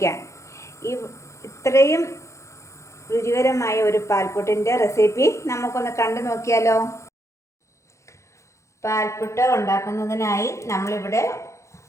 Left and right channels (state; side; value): late; right; 0.14 ms